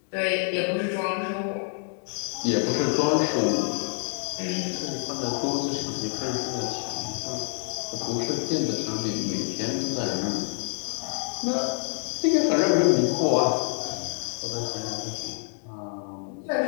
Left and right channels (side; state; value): right; silent; 60 dB below the other